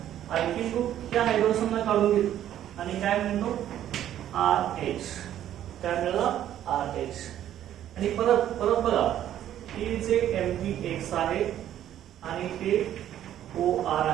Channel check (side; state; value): left; quieter; 11.5 dB